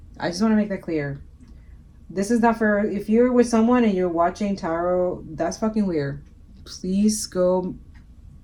I just want to make that clear. This is not for, if you're with someone and you're watching tarot, that's fucking weird. Please go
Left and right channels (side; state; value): both; identical; correlation 1.00